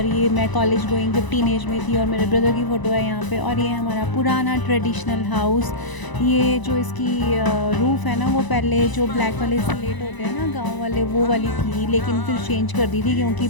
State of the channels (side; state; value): right; late; 1.0 ms